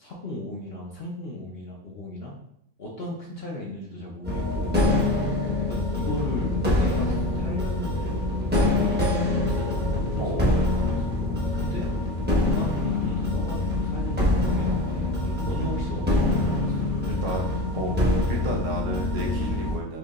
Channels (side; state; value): both; normal; correlation 0.30